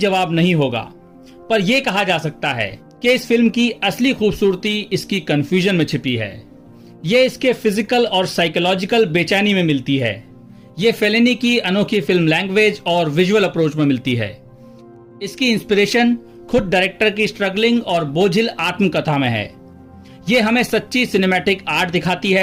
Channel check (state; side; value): identical; both; correlation 1.00